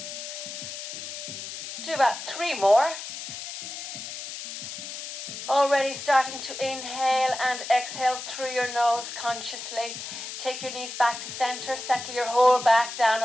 Do about 3 more. Already starting to inhale and exhale through your nose consciously. Take your knees back to center, settle your whole back down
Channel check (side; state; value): left; noise; hiss, 8 dB below the sound